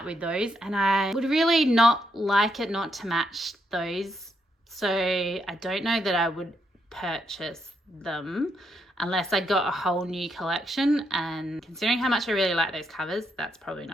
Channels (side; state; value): both; normal; correlation 0.78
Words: with those, and I would really not like it not to match those. So I don't know that I would purchase them unless I got a whole new collection, and considering how much I really like those covers, that's probably